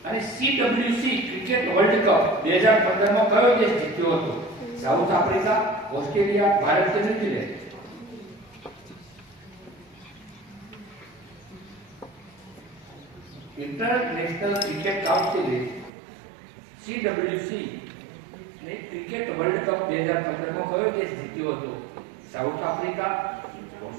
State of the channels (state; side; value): drops out; left; at 15.9 s